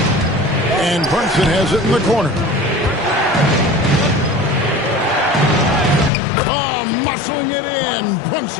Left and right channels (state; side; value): drops out; right; at 6.1 s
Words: And Brunson has it in the corner. Oh, muscling it in.